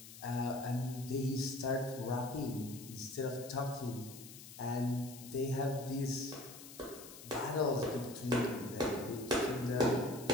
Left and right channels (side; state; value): left; noise; hiss, 15 dB below the sound